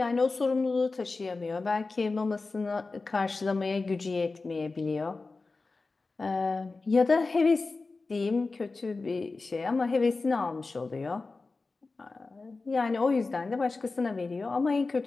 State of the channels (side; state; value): right; quieter; 3.7 dB